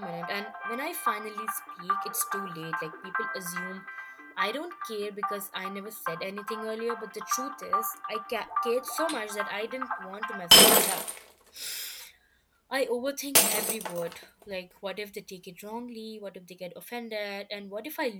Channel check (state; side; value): identical; both; correlation 1.00